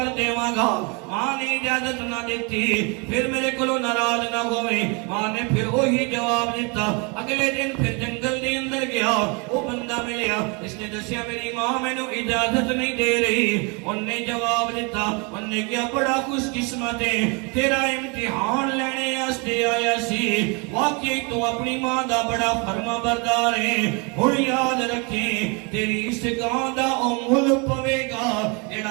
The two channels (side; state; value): left; quieter; 31.6 dB